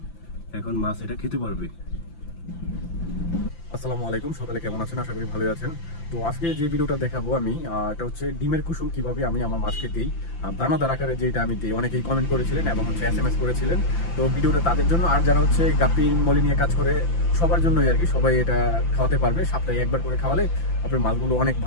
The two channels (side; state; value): right; late; 5.9 ms